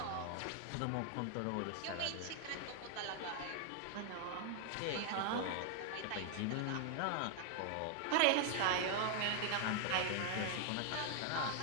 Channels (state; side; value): different; both; correlation 0.00